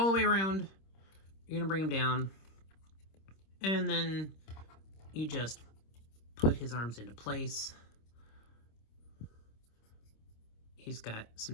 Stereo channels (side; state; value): right; late; 26 ms